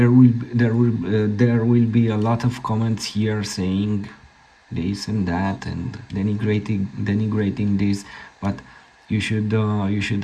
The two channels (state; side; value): identical; both; correlation 1.00